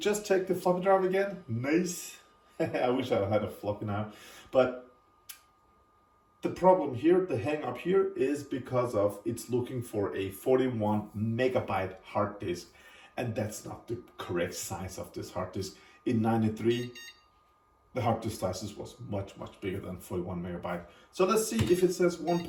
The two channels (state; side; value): identical; both; correlation 1.00